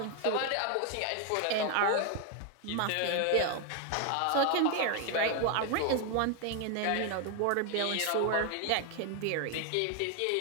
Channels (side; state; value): both; different; correlation 0.01